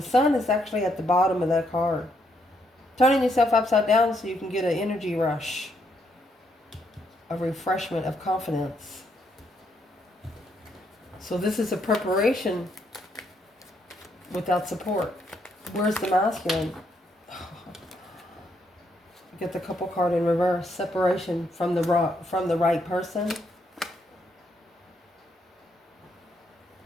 Sun is actually at the bottom of that card. Turning yourself upside down so you can get an energy rush, a refreshment of confidence. So this is a preparation without support. Where's the masculine? Get the couple card in reverse. Separation from the right person.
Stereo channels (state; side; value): normal; both; correlation 0.75